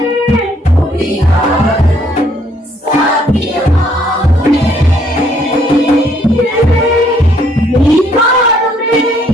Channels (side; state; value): both; normal; correlation 0.66